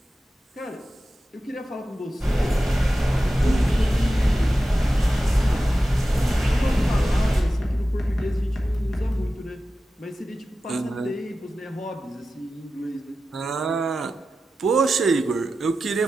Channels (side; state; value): both; normal; correlation 0.93